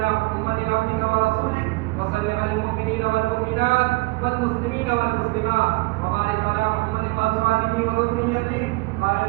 محمد عبدك ورسولك، وصل على المؤمنين والمؤمنات والمسلمين والمسلمات، وبارك على محمد وأزواجه وذريته. قال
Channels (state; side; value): quieter; left; 23.5 dB